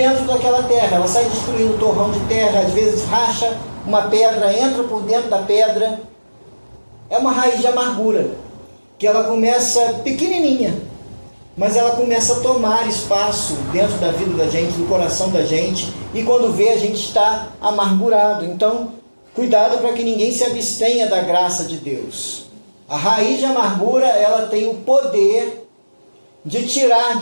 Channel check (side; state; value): both; inverted; correlation -1.00